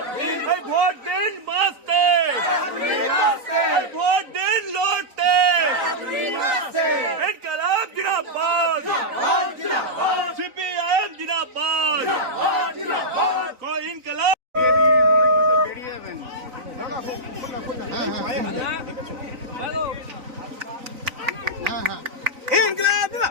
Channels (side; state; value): left; late; 3.9 ms